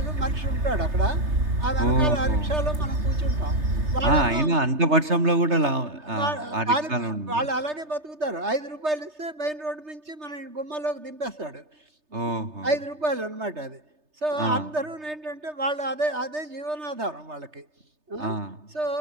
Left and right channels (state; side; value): late; left; 3.3 ms